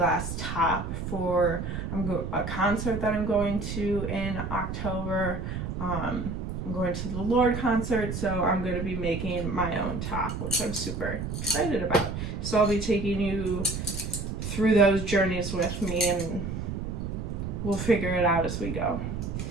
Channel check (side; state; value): right; noise; rumble, 5 dB below the sound